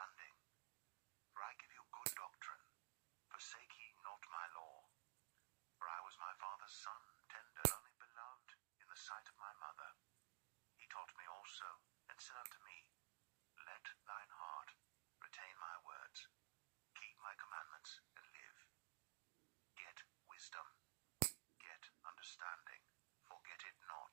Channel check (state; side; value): silent; left; digital silence